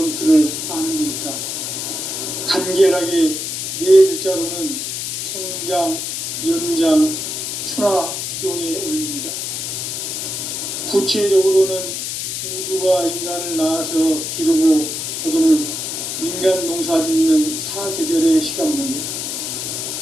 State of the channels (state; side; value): noise; left; hiss, 4 dB below the sound